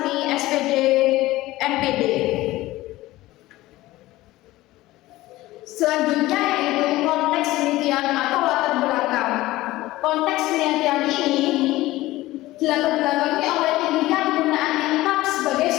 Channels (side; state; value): right; quieter; 17.5 dB